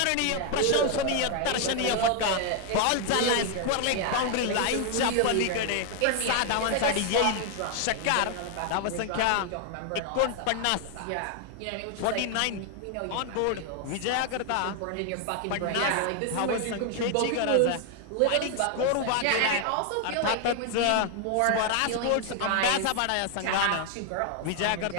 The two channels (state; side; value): different; both; correlation 0.00